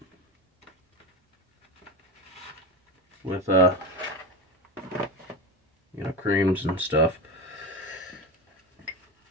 with you know, creams and stuff.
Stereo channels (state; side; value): normal; both; correlation 0.21